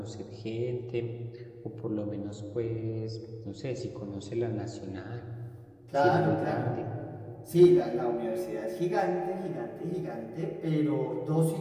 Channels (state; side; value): identical; both; correlation 1.00